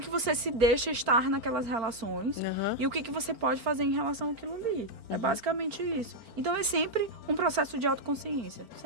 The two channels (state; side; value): late; left; 4.4 ms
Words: que você se deixa estar naquelas relações e o que você pode fazer em relação àquilo ali. É basicamente isso. Então é sempre um processo de autoconsciência,